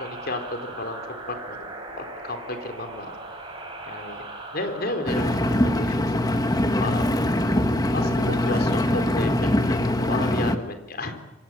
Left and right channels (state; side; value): normal; both; correlation 0.68